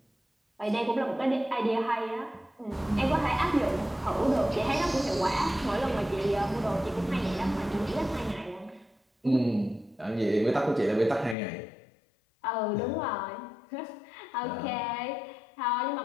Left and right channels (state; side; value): drops out; right; at 11.4 s